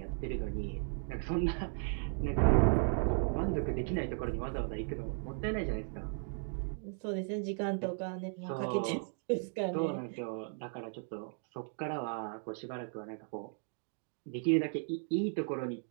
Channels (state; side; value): silent; left; 54 dB below the other